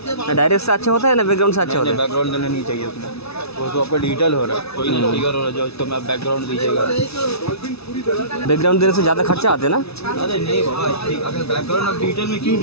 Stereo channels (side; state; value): right; late; 0.79 ms